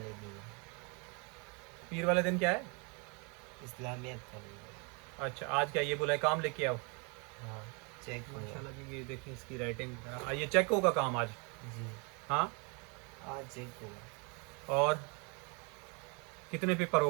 दिन, पीर वाले दिन क्या है? इस्लामियत का दिन। अच्छा, आज क्या ये बोला है काम लेके आओ? हाँ, चेक हुआ। माशाल्लाह जी, ये देखें इसकी राइटिंग। ये चेक होगा काम आज? जी, हाँ। आज चेक हुआ। और कितने पेपर हो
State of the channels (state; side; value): quieter; left; 33.0 dB